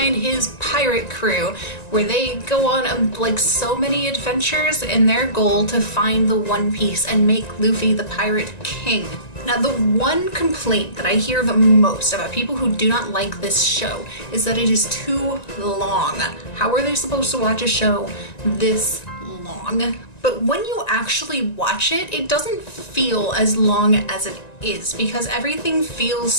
his pirate crew, where they go on like so many adventures in their goal to find the One Piece and make Luffy the pirate king. Now, the one complaint that I hear the most about people who do not like this show is that it is too long. How are they supposed to watch a show this long? But when you actually watch it, it doesn't feel as long as it is because everything feels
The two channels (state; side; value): late; right; 1.9 ms